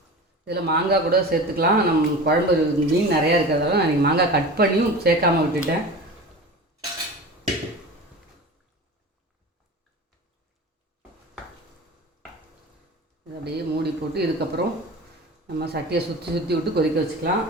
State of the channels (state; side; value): normal; both; correlation 0.33